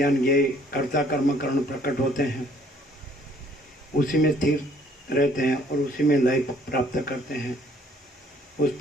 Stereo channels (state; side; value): normal; both; correlation 0.61